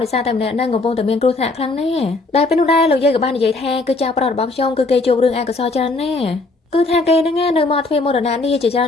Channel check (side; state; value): right; quieter; 3.4 dB